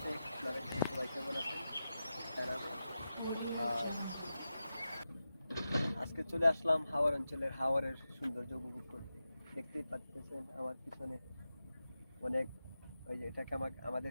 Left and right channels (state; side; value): inverted; both; correlation -0.92